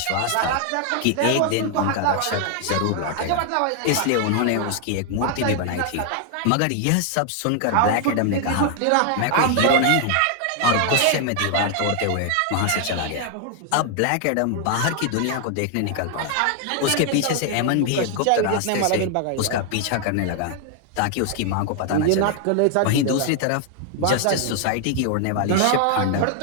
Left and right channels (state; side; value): different; both; correlation 0.00